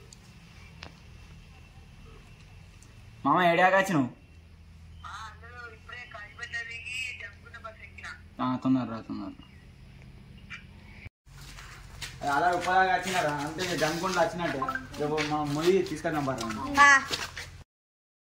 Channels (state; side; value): identical; both; correlation 1.00